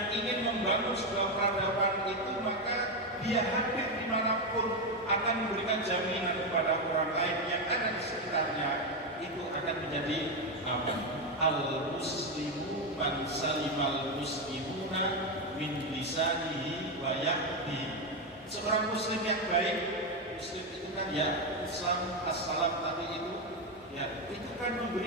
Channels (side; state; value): both; normal; correlation 0.09